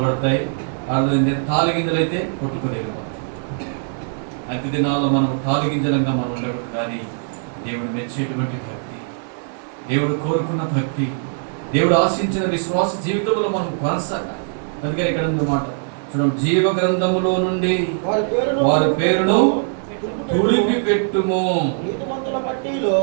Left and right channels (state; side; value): silent; left; 63 dB below the other